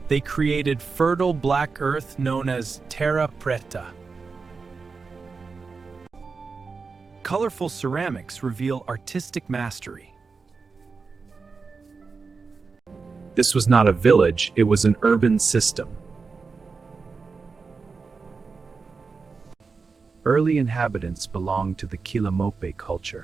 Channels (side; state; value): left; quieter; 4.7 dB